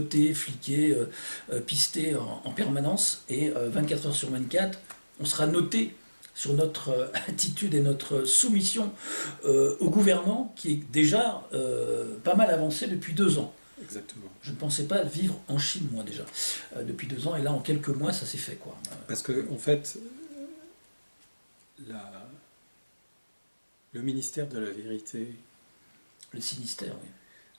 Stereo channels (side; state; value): both; inverted; correlation -1.00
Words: fliqués, pistés en permanence, et 24 heures sur 24, on sera noté sur notre attitude et notre soumission au gouvernement qui est déjà pas mal avancé depuis 2 ans. Exactement. Je ne pensais pas vivre en Chine, moi, déjà, depuis 2 ans, et là, en quelques mois, ça s'est fait, quoi. Parce que, en fait, le ministère de la vérité... Le sinistère, oui.